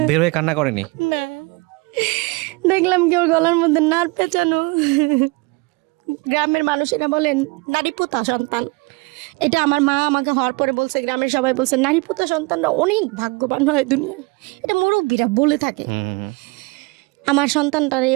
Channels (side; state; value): left; quieter; 26.8 dB